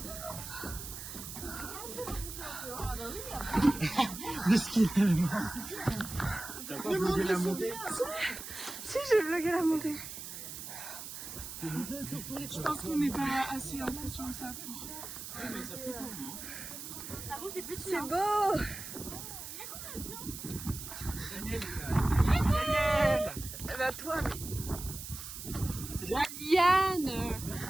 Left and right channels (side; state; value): right; noise; hiss, 9 dB below the sound